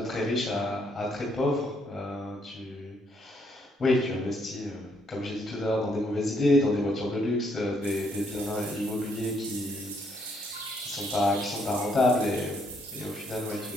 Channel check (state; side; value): normal; both; correlation 0.71